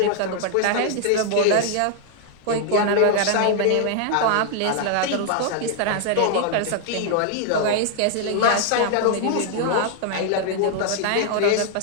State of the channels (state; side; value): different; both; correlation 0.00